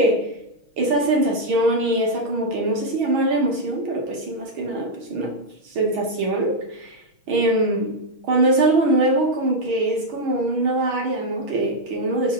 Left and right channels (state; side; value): late; left; 6.2 ms